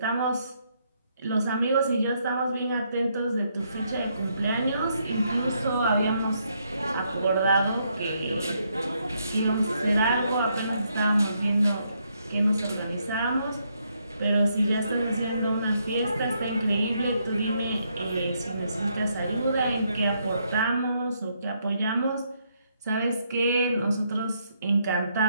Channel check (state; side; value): inverted; both; correlation -0.75